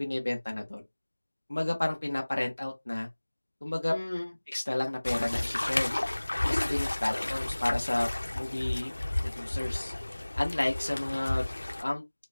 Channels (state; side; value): inverted; both; correlation -1.00